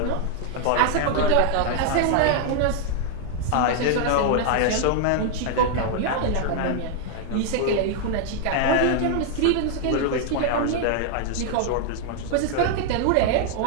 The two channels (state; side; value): different; both; correlation 0.00